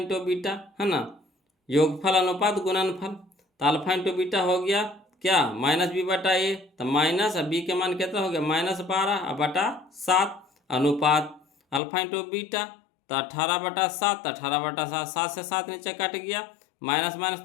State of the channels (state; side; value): drops out; right; at 11.8 s